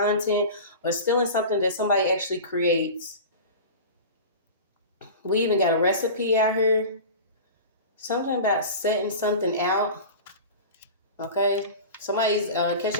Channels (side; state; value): both; inverted; correlation -0.33